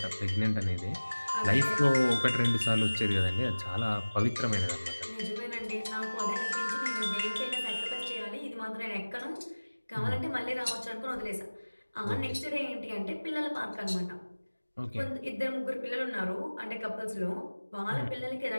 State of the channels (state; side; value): inverted; both; correlation -1.00